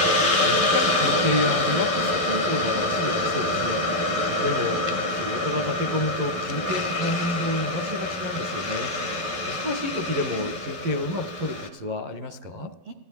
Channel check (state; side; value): late; left; 12 ms